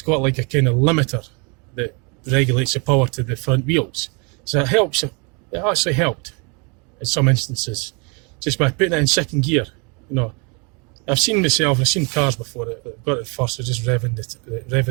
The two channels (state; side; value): quieter; left; 32.5 dB